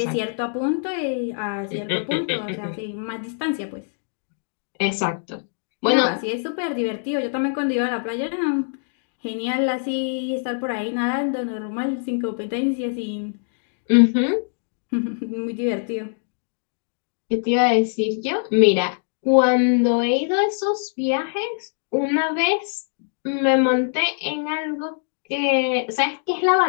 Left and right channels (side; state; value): right; silent; digital silence